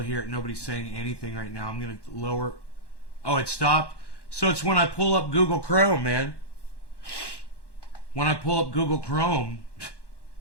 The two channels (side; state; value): right; late; 1.1 ms